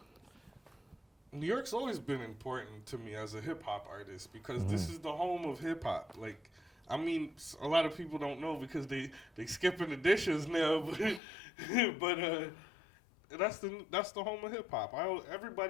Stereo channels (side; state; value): right; drops out; at 11.2 s